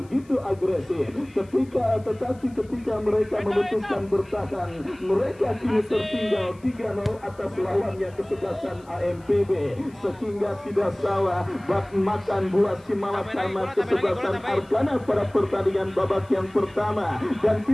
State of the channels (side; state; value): left; noise; hiss, 29 dB below the sound